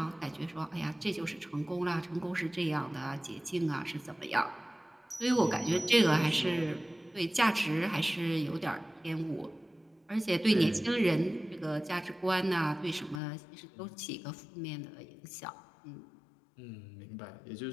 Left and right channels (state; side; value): drops out; right; at 13.2 s